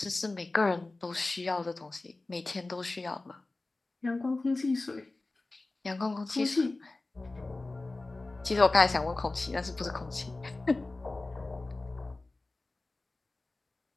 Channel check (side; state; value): right; quieter; 3.2 dB